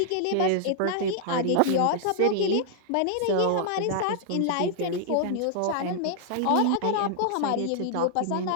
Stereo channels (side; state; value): both; different; correlation -0.01